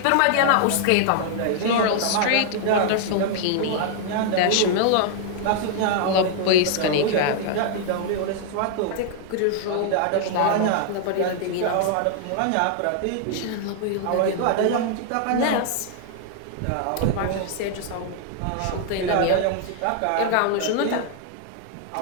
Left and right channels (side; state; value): both; different; correlation 0.00